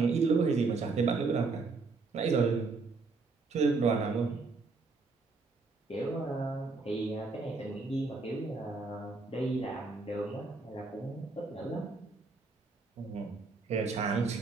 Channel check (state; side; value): quieter; left; 4.0 dB